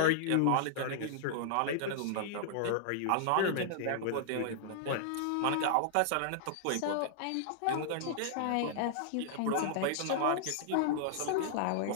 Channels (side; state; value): both; different; correlation -0.01